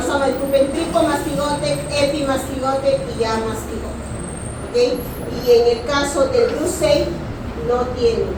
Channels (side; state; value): both; identical; correlation 1.00